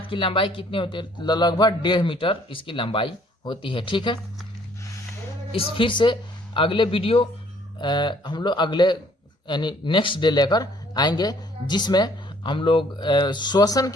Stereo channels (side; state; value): both; normal; correlation 0.61